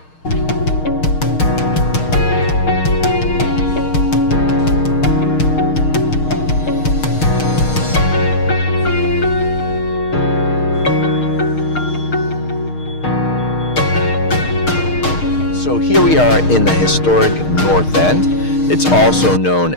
So here we are in the historic North End. It's also known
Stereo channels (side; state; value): right; late; 6.5 ms